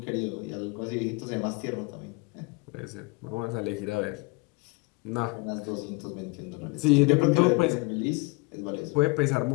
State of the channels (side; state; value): right; quieter; 27.5 dB